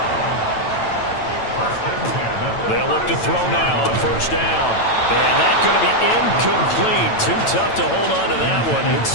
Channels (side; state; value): right; late; 9.0 ms